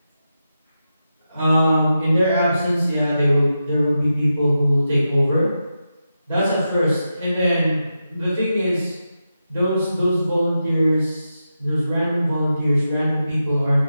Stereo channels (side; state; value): both; inverted; correlation -0.89